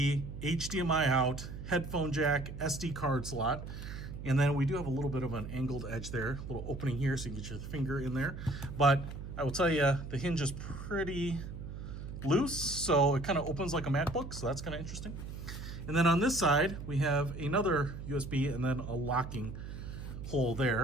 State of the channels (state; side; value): noise; right; hum, 9 dB below the sound